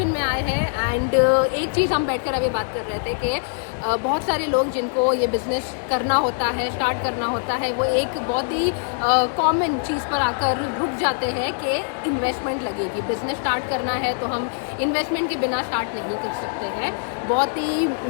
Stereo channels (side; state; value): right; silent; 64 dB below the other